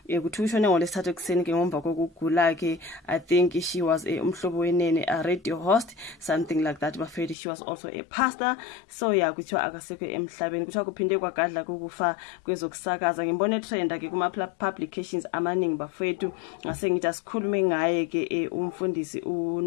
kuthi ushone ngolesithathu ekseni ke ngomva kokugula ke. I think she was umhlobo wenene, a radio host, something like that. Bafethu she was also a pastor. So yeah, kuthiwa akasekho emhlabeni, kuthiwa kuphinde kwagadla kukufa kwezokusakaza. Ngimbone trend ke kuma publications amaningi bafethu, ngase ngithi asikhulume ngaye ke umfundisi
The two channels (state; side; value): drops out; right; at 7.4 s